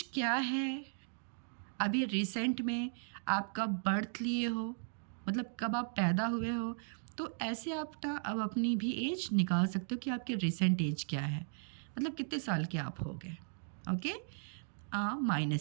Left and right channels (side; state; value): left; silent; digital silence